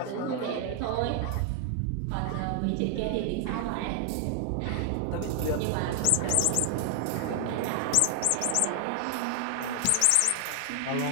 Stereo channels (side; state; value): both; different; correlation 0.00